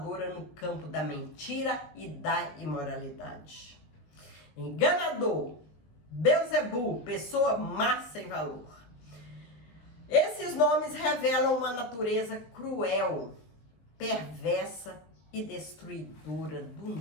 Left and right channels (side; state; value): right; late; 19 ms